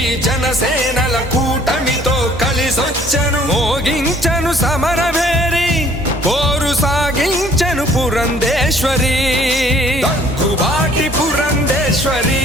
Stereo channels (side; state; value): both; normal; correlation 0.58